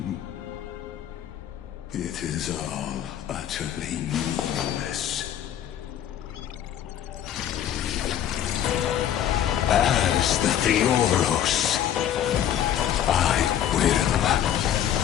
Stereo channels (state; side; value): quieter; right; 10.4 dB